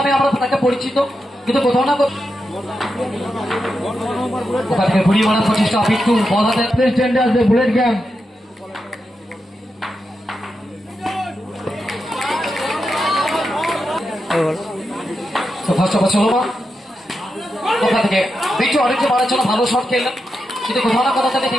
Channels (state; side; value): normal; both; correlation 0.87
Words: আমরা তাকে পরিচিত, কিন্তু কোথাও না ওখান থেকে ঘুরিয়ে মারার প্রচেষ্টা বিট্টু বল হাতে স্ট্যান্ডে আসবে বুলেট গ্যাং। ফার্স্ট ওভার চলো ওখান থেকে বিট্টু অনেকটা মারার জন্য ভালো শট খেললেন, কিন্তু কোথাও না কোথাও থেকে